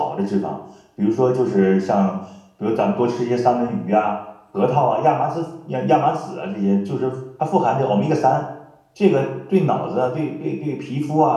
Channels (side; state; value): both; identical; correlation 1.00